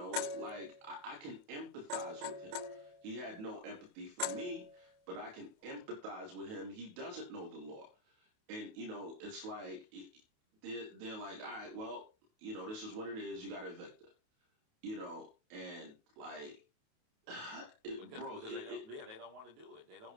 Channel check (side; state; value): left; late; 28 ms